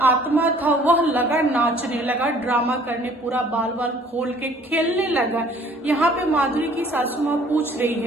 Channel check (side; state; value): both; normal; correlation 0.55